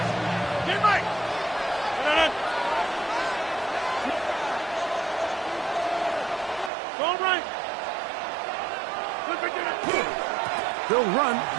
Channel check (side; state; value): left; drops out; at 6.7 s